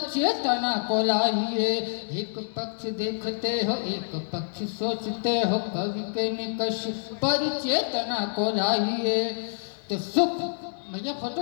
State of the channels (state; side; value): silent; right; digital silence